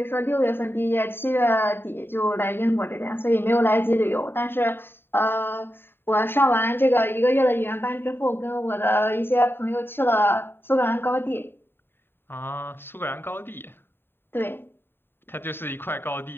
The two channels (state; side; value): late; right; 0.11 ms